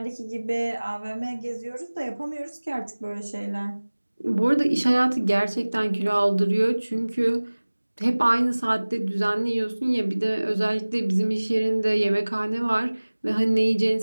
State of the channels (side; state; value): both; inverted; correlation -1.00